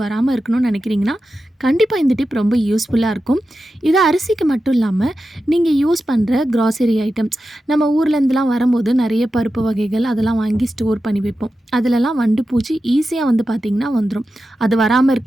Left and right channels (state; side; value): normal; both; correlation 0.91